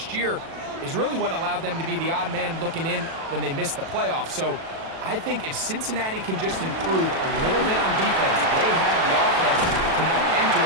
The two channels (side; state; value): left; late; 37 ms